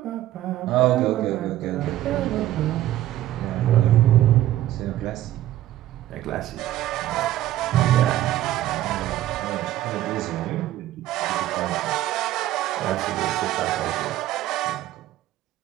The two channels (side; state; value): left; quieter; 13.9 dB